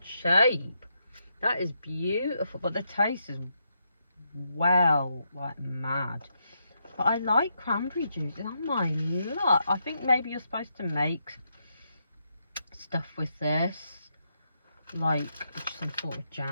shape. That is beautiful, but the taste is well like mad. But I like cranberry juice. Oh my luck. I think maybe you're supposed to make stuff with this, like some sort of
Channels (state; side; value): inverted; both; correlation -0.81